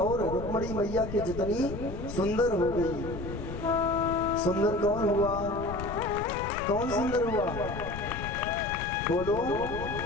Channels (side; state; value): left; noise; rumble, 8 dB below the sound